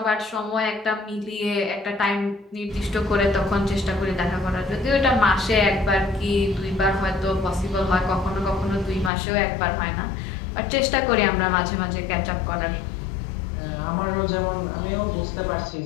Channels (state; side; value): drops out; right; at 9.1 s